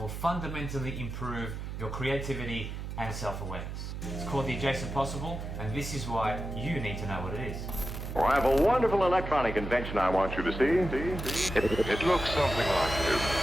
will fundamentally improve your creativity and self-awareness. It's called the adjacent possible, and this is why you need to know what it is. Well, I have a wonderful electronic invention I want you to see. It looks something like this.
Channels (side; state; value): right; noise; hum, 7 dB below the sound